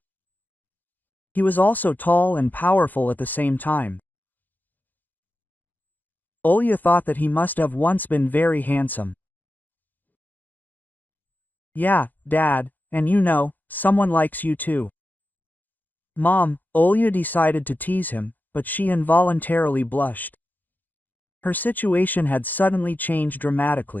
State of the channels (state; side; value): late; right; 0.085 ms